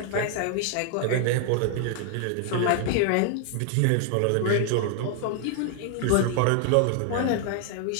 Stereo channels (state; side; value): different; both; correlation 0.00